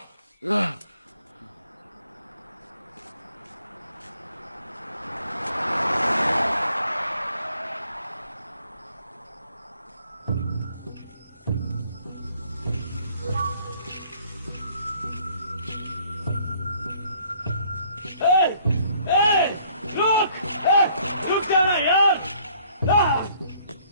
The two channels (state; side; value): inverted; both; correlation -0.61